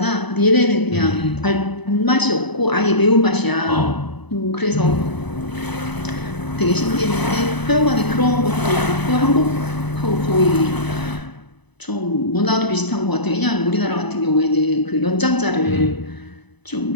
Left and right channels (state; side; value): late; right; 0.99 ms